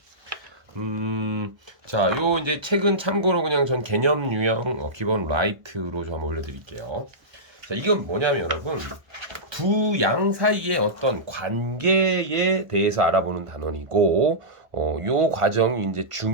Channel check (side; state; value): left; late; 1.1 ms